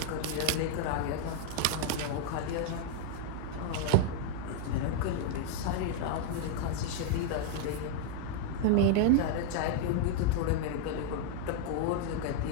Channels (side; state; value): both; different; correlation 0.00